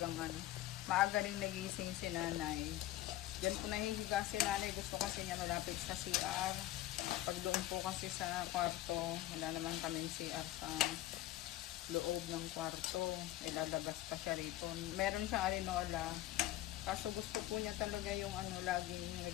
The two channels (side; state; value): right; quieter; 15.0 dB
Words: maaga rin nagising si nanay. Diyan po nahihiga si nanay. Gusto kasi niya malapit sa CR. Pag doon po kasi sa kwarto, wala naman kaming CR sa loob ng kwarto. Ilalabas pa siya rito. Meron siyang arenola. Kaso gusto po niya talaga yung laging